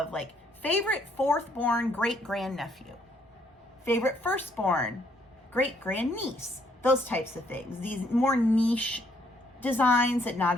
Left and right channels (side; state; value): both; normal; correlation 0.69